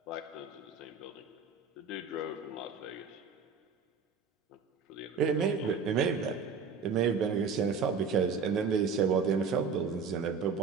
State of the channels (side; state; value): left; quieter; 5.5 dB